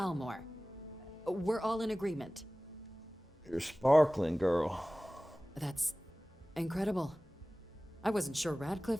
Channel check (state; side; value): normal; both; correlation 0.98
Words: We're all in agreement. You're sparkling, girl. That's incredible. I wasn't sure